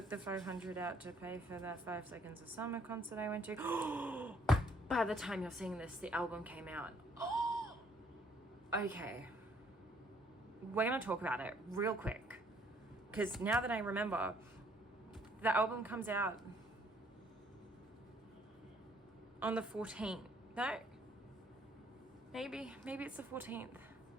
the 500 out to pay for that 5 Seconds of Summer concert I went to. By the time you're seeing this, the album came out. Okay. We're going to talk about it real quick. Because now that I remember, the album comes out on the 14th. No? Maybe it's the 14th.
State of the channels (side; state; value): both; normal; correlation 0.64